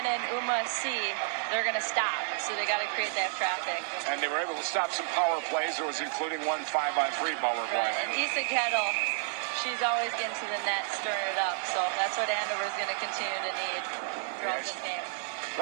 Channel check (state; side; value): silent; left; digital silence